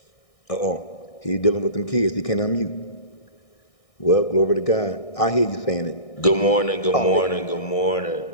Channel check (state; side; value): late; right; 1.6 ms